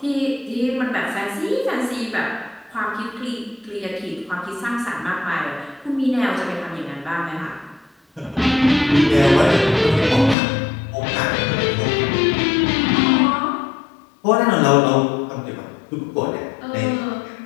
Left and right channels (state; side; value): drops out; right; at 10.4 s